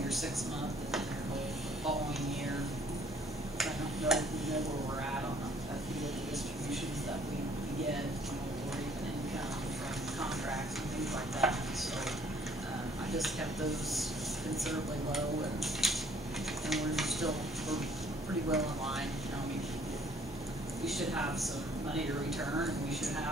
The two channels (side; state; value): both; normal; correlation 0.60